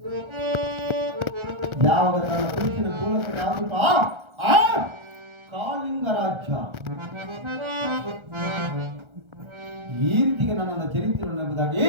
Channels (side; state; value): left; late; 1.3 ms